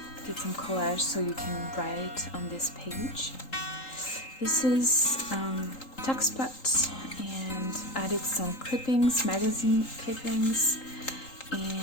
Did some collage so you can write on this page. This is Tuxpot, and added some clippings, magazine clippings,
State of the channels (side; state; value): right; late; 3.8 ms